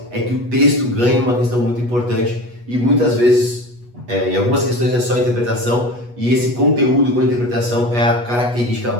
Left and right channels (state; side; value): late; left; 8.3 ms